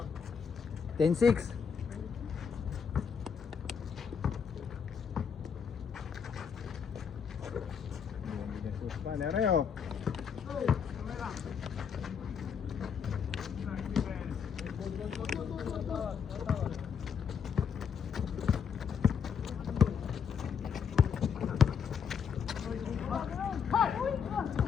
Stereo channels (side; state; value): right; quieter; 6.9 dB